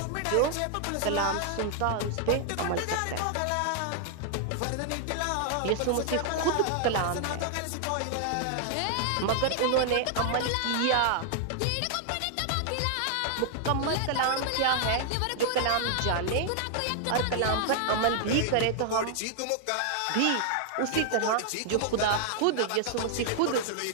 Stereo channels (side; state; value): both; different; correlation 0.00